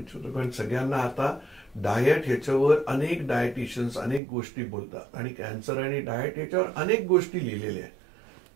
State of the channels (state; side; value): drops out; left; at 4.2 s